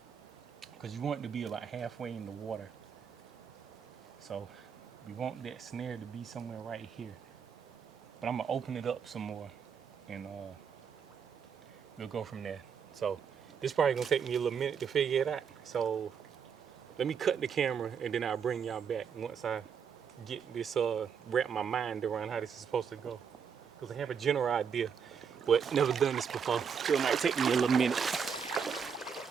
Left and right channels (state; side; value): quieter; left; 6.9 dB